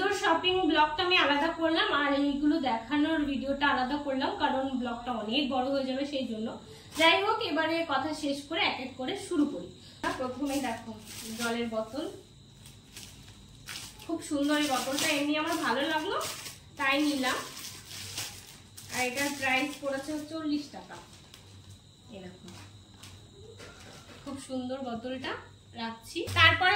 ব্লগটা আমি আলাদা করলাম, আর এইগুলো দেখানোর ভিডিওটা আলাদা করলাম, কারণ ব্লগটা অনেক বড় হয়ে যাবে সেই জন্য। যাই হোক, এবারে কথা শেষ করে এক এক করে শুরু করি। প্রথমেই দেখো জলের বোতল, খুব সুন্দর এই বোতলটা, এমনি আমার ভালো লাগলো তাই নিলাম। আর এটার প্রাইস পড়েছে 40 টাকা। এরকম খুব সুন্দর বোতলটা রাখছি। তারপরে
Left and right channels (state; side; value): identical; both; correlation 1.00